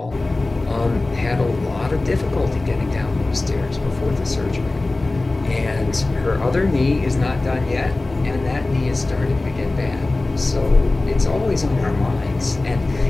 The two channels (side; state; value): right; quieter; 3.1 dB